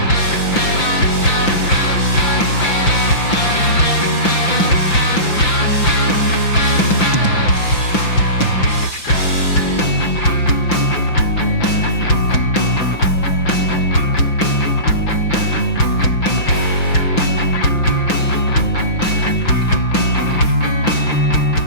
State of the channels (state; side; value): late; right; 5.9 ms